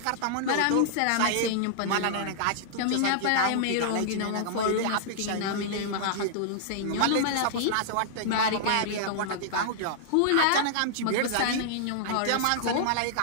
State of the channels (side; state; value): both; different; correlation -0.01